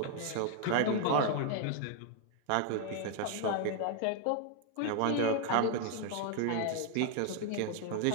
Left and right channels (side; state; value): both; different; correlation 0.00